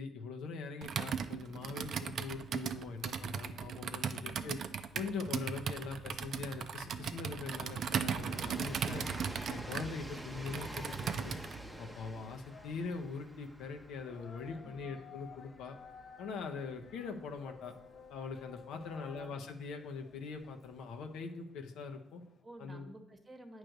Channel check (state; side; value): normal; both; correlation 0.64